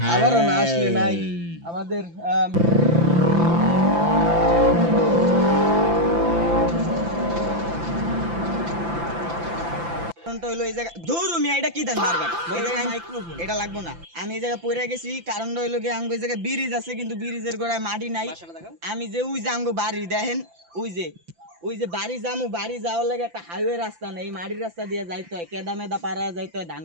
আবারও না আসলে নাই আমাদের হইলো এই জায়গা ধরু মিয়া এটা কি দেন বারবার মাইক্রোফোন এটা লাগবো না আমি এই জায়গায় পড়ে গেছি কারণটা হইলো কি আঙ্গো এই জায়গায় ব্রিজ আছে কিন্তু ব্রিজের গোড়ায় মাটি নাই আমি যে ওই যে আঙ্গো বাড়ি দেখেন ওই যে বাড়ি যামু বাড়ি যাওয়ার লাগে একটা হাইওয়ে রাস্তা নেই এই মাটির রাস্তা দিয়ে যাইতে হয় কেদা মেদা পাড়ায় যাইতে হয় ধান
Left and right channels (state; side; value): late; left; 5.9 ms